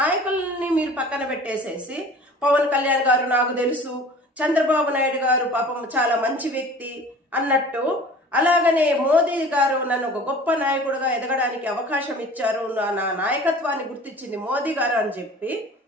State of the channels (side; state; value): both; normal; correlation 0.44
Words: మీరు పక్కన పెట్టేసేసి పవన్ కళ్యాణ్ గారు నాకు తెలుసు, చంద్రబాబు నాయుడు గారు పాపం చాలా మంచి వ్యక్తి అన్నట్టు, అలాగనే మోదీ గారు నన్ను ఒక గొప్ప నాయకుడిగా ఎదగడానికి అవకాశం ఇచ్చారు, నా నాయకత్వాన్ని గుర్తించింది మోదీ గారు అని చెప్పి